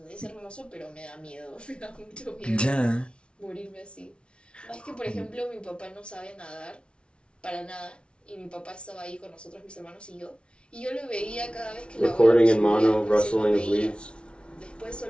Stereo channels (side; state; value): right; late; 0.058 ms